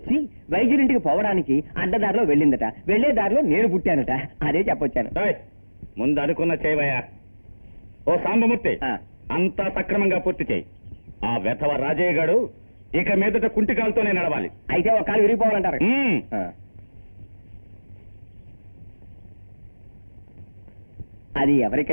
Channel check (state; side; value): inverted; both; correlation -1.00